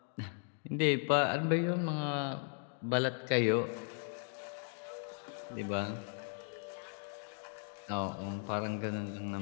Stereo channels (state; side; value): silent; right; 53 dB below the other